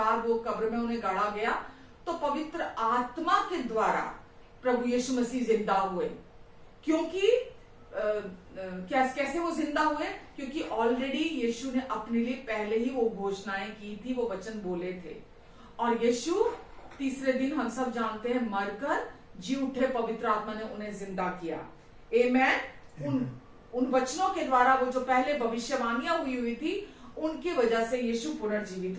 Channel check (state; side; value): identical; both; correlation 1.00